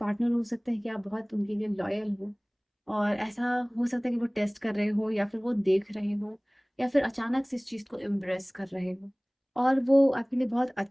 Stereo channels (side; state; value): both; identical; correlation 1.00